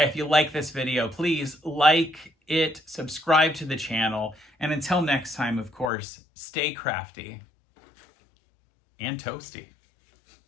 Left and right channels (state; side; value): drops out; right; at 5.9 s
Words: you like this video, please like it, subscribe to the channel, and until next time, of course, stay crafty and toasty.